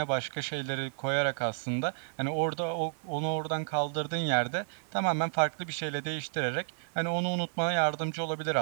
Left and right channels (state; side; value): silent; left; 57 dB below the other